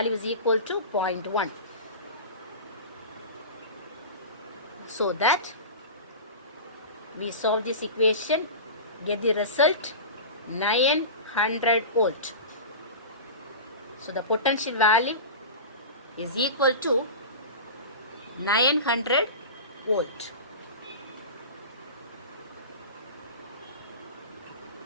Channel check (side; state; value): both; inverted; correlation -0.30